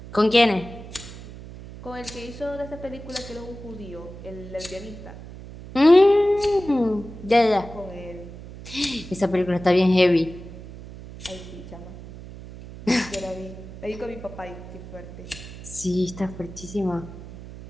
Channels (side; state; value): right; noise; hum, 14 dB below the sound